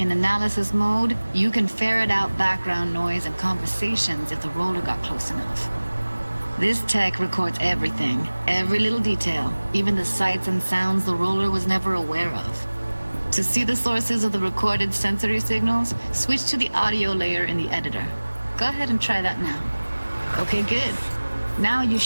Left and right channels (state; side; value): inverted; both; correlation -1.00